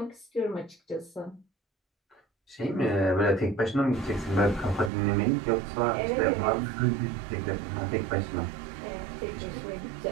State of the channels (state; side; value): drops out; left; at 4.9 s